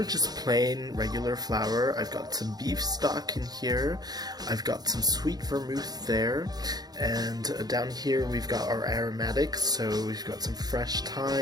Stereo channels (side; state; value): left; late; 0.19 ms